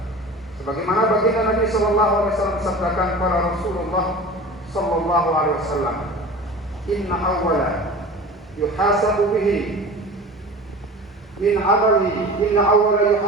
Sebagaimana baginda Nabi sallallahu alaihi wasallam sabdakan kepada Rasulullah sallallahu alaihi wasallam, inna awwala yuhasabu bihi min amali, inna awwala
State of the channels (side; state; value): both; normal; correlation 0.37